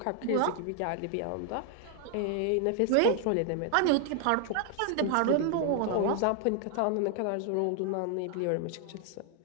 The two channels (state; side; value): different; both; correlation 0.00